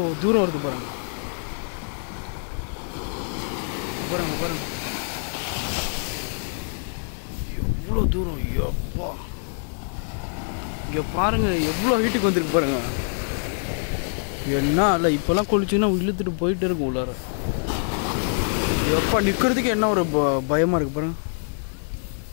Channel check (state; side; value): silent; right; digital silence